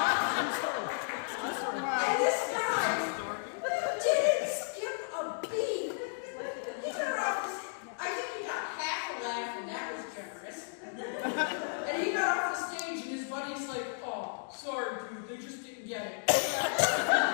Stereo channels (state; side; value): silent; right; digital silence